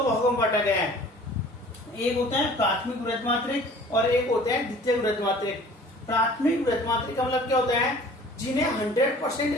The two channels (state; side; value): normal; both; correlation 0.48